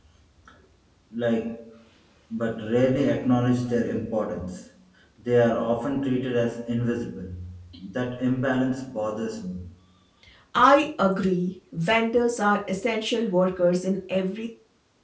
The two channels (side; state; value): both; identical; correlation 1.00